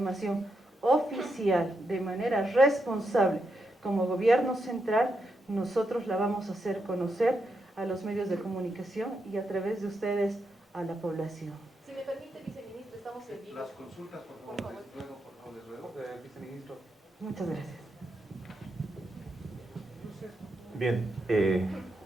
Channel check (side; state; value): both; normal; correlation 0.83